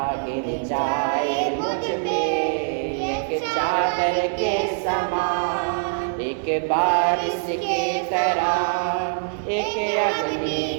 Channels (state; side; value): silent; left; digital silence